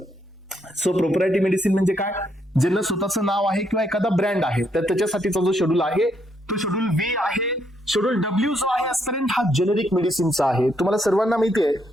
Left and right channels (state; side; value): normal; both; correlation 0.75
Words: सो प्रोप्रायरिटी मेडिसिन म्हणजे काय, ज्यांना स्वतःचं नाव आहे किंवा एखादा ब्रँड आहे, तर त्याच्यासाठीचा जो शेड्यूल आहे तो शेड्यूल व्ही आहे. शेड्यूल डब्ल्यू जो आहे आजपर्यंत हा जेनेरिक मेडिसिनचा आहे. तुम्हाला सर्वांना माहिती आहे